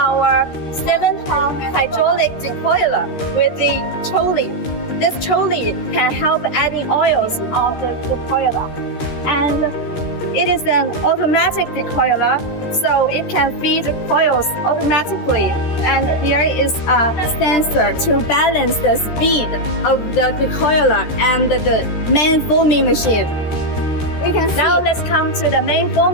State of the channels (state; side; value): late; right; 13 ms